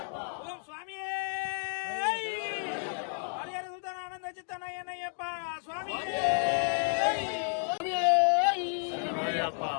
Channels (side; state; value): right; silent; 57 dB below the other